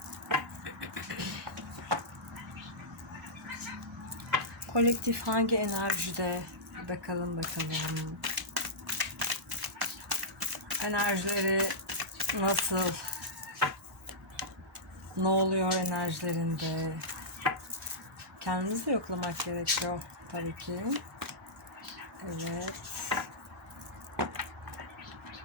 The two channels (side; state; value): both; normal; correlation -0.13